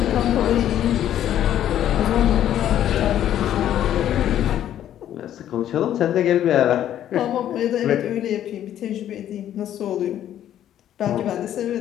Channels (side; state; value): right; quieter; 11.3 dB